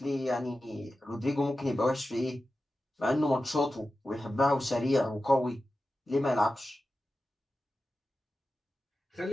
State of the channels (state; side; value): normal; both; correlation 0.93